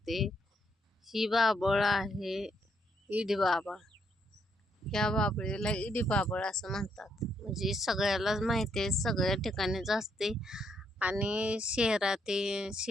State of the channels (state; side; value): normal; both; correlation 0.75